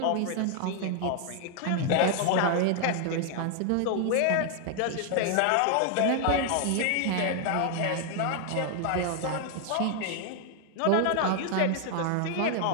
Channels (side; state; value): both; different; correlation 0.00